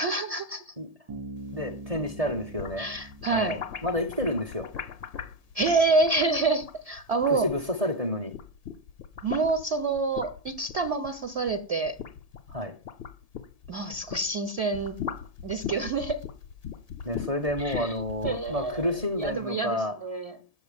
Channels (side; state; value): left; late; 1.7 ms